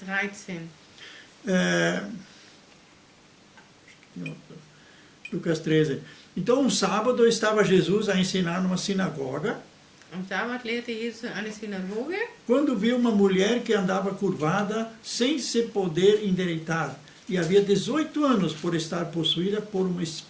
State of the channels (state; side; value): identical; both; correlation 1.00